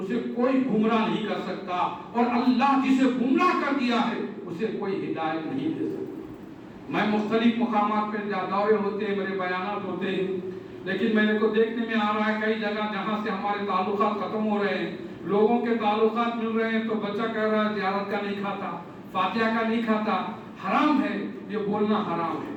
اسے کوئی گمراہ نہیں کر سکتا اور اللہ جسے گمراہ کر دیا ہے اسے کوئی ہدایت نہیں دے سکتا۔ میں مختلف مقامات پہ دورے ہوتے ہیں، میرے بیانات ہوتے ہیں، لیکن میرے کو دیکھنے میں آ رہا ہے کئی جگہ جہاں سے ہمارے تعلقات ختم ہو رہے ہیں، لوگوں کے تعلقات مل رہے ہیں تو بچہ کہہ رہا ہے زیارت کا نہیں کھاتا، فاتحہ کا نہیں کھاتا۔ حرام ہے، یہ بولنا حرام ہے،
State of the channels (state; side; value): identical; both; correlation 1.00